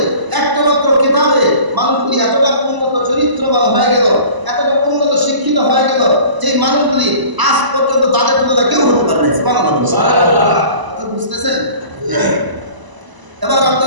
একটা মাত্র কিতাবে মানুষগুলি এতটা উন্নত চরিত্রবান হয়ে গেল, এতটা উন্নত শিক্ষিত হয়ে গেল, যেই মানুষগুলি আজ পর্যন্ত তাদের তুলনায় কেউ হতে পারে না। সুবহানাল্লাহ। কথা বুঝতেছেন? এবার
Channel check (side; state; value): left; late; 1.0 ms